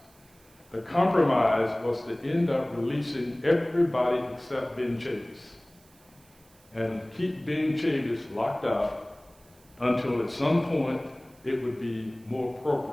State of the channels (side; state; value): right; noise; hiss, 29 dB below the sound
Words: The compromise was to end up releasing everybody except Ben Chavis and keep Ben Chavis locked up until at some point it would be more